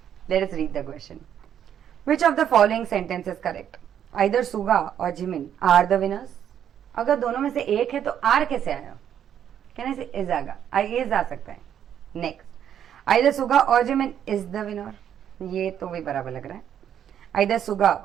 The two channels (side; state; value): left; quieter; 9.5 dB